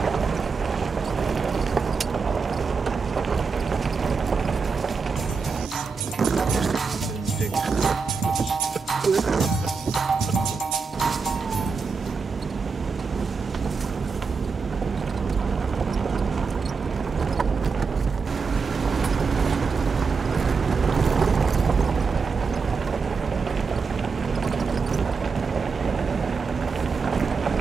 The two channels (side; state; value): left; quieter; 5.0 dB